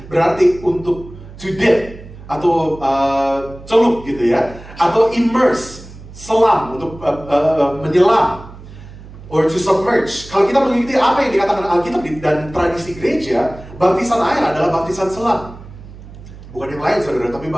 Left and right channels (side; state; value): right; noise; hum, 17 dB below the sound